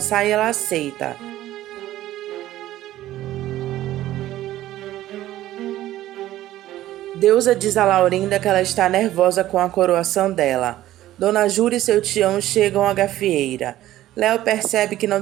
e ela aceita. Deusa diz a Laurinda que ela está nervosa com a coroação dela. Dona Jura e seu tião chegam à gafieira. Léo percebe que não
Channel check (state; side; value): quieter; left; 14.3 dB